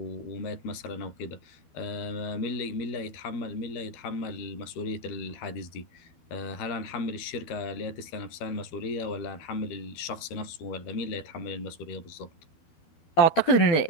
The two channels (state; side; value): late; right; 12 ms